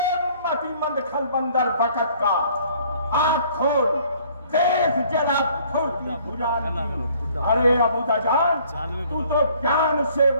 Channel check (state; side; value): inverted; both; correlation -0.58